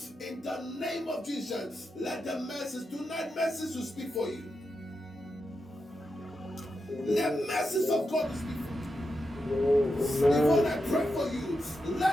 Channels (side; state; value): both; normal; correlation 0.87